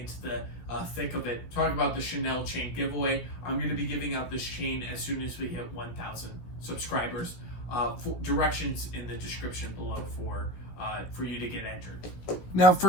the thick of it, talking about the Chanel chain giveaway, I'm going to be giving out this chain as soon as we hit 1,000 subscribers. Directions in the description below for you to get entered. Now,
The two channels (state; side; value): late; right; 17 ms